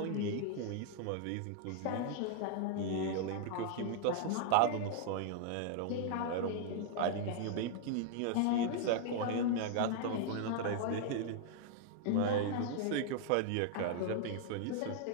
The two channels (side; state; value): both; different; correlation 0.00